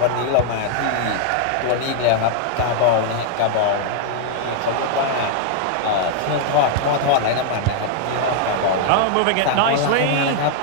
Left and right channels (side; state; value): both; different; correlation 0.00